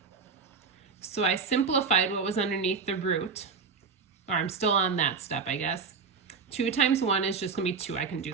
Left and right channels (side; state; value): left; quieter; 5.2 dB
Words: So I simplified what was underneath the root, or I'm still on that step, I guess. 2 times 1 is just going to be 2. I can